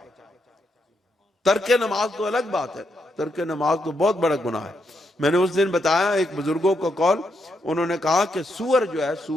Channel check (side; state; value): both; normal; correlation 0.80